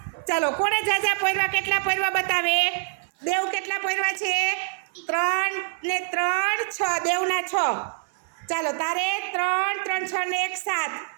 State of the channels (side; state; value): left; silent; 57 dB below the other